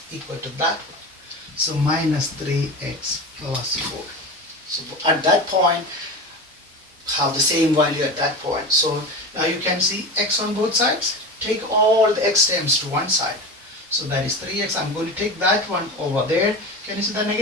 equal to that one. So minus 3x plus 4. So at that point, have the same value at that point. So now you can see x on both sides. Take all the x terms to one side. So that is 3x. I'm going to take that one over there. Can you see the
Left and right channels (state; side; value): normal; both; correlation 0.27